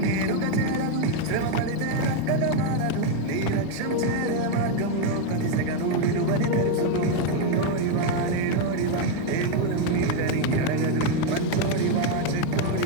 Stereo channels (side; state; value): both; different; correlation 0.01